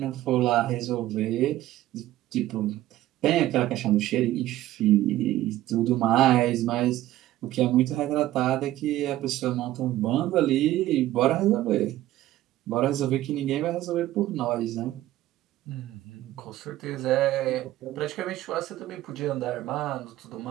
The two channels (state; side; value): quieter; left; 14.9 dB